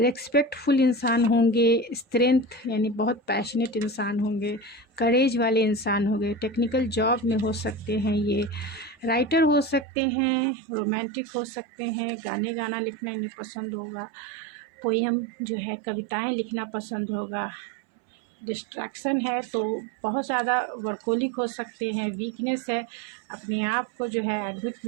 इंसान होंगे, स्ट्रेंथ यानी बहुत पैशनेट इंसान होंगे, करेज वाले इंसान होंगे। टेक्निकल जॉब में हो सकते हैं ये, राइटर हो सकते हैं, रोमांटिक हो सकते हैं, गाने गाना लिखना इन्हें पसंद होगा, पोएम जो है कविताएं लिखना पसंद होगा। डिस्ट्रैक्शन है तो बहुत ज़्यादा वर्कोलिक हो सकते हैं। वीकनेस है, अपने आप को जो है एडमिट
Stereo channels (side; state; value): left; drops out; at 9.9 s